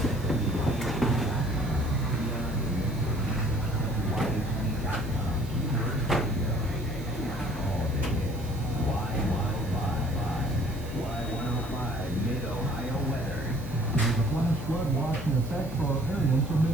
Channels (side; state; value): right; noise; hiss, 21 dB below the sound